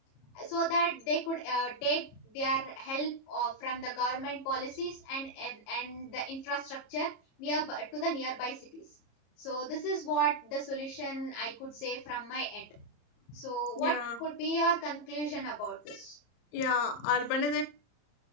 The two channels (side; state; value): right; late; 34 ms